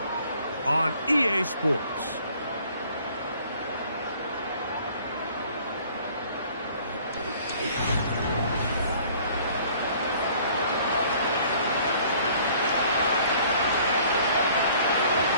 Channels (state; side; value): inverted; both; correlation -0.55